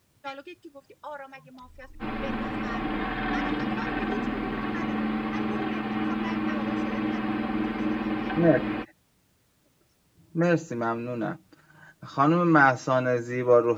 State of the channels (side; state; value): both; identical; correlation 1.00